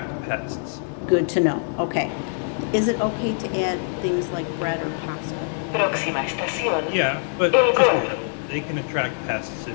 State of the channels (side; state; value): right; silent; 63 dB below the other